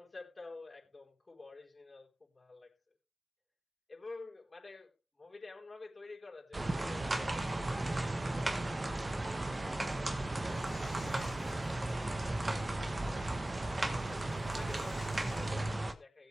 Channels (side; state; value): both; normal; correlation 0.97